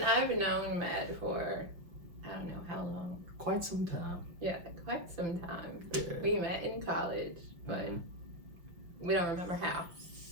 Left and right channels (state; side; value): late; left; 5.7 ms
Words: known Matt for, I don't know how long. Quite some time. Yeah, quite some time. Yeah. We met in college, but we don't remember how.